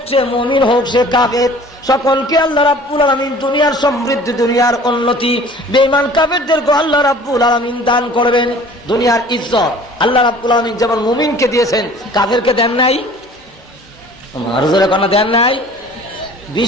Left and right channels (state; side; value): normal; both; correlation 0.48